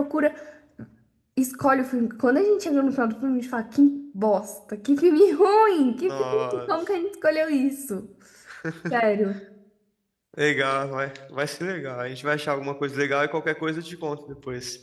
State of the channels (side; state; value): both; identical; correlation 1.00